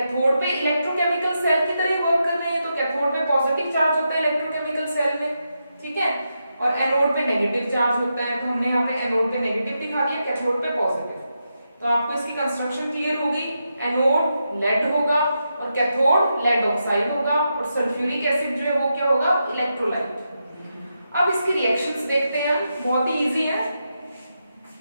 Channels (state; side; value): inverted; both; correlation -0.85